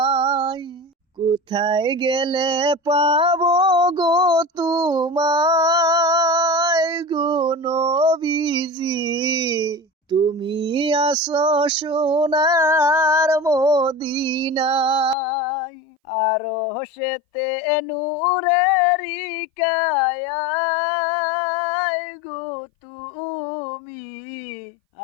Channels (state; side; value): drops out; right; at 15.2 s